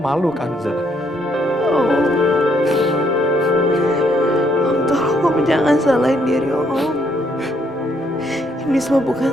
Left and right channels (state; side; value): normal; both; correlation 0.71